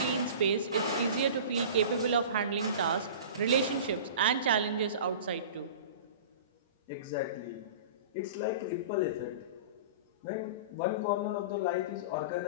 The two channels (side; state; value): both; inverted; correlation -0.37